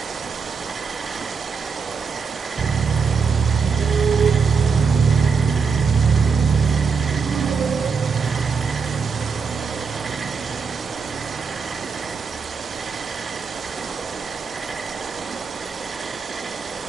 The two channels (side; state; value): left; quieter; 5.5 dB